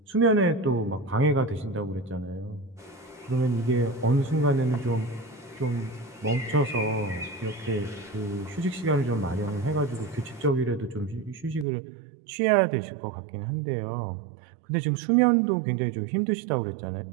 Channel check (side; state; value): left; drops out; at 11.7 s